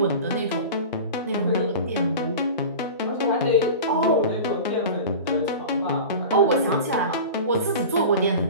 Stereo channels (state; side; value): inverted; both; correlation -0.33